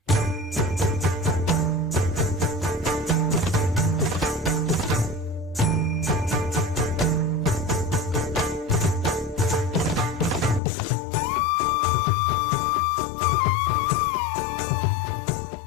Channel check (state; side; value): drops out; right; at 10.6 s